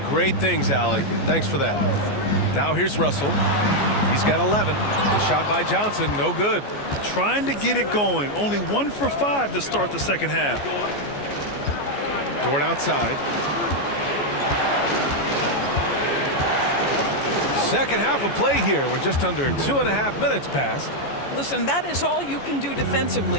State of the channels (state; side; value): late; right; 14 ms